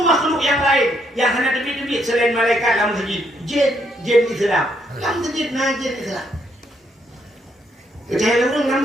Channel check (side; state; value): both; normal; correlation 0.73